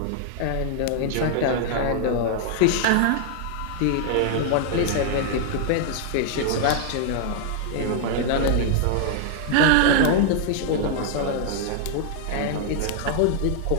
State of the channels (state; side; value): different; both; correlation -0.01